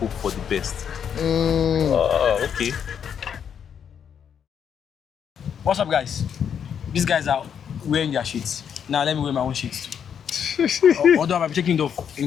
for the best. Okay. What's up, guys? These guys are wearing their sheets. Now let me wear my own sheets too. Although I'm taking it off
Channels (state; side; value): quieter; right; 8.0 dB